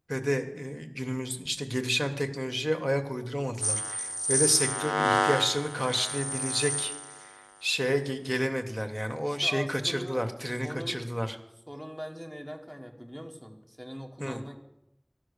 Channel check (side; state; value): both; identical; correlation 1.00